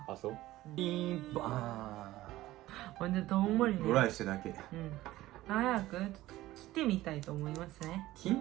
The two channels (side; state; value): left; quieter; 16.4 dB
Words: た。あ、そう。ピンバほんでどんまりね。ーン。ドライしてだけ。うん。早くちょっと切ってみたいと思いますね。切